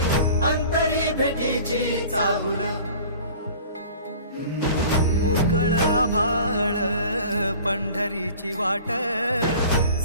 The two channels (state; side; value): inverted; both; correlation -0.44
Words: अंतरी भेटीची चाहुल मोकळ आभाळ पंढरीची वाट